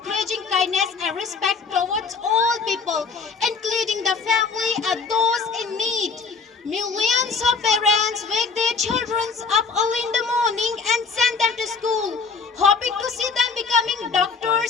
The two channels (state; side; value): quieter; right; 5.0 dB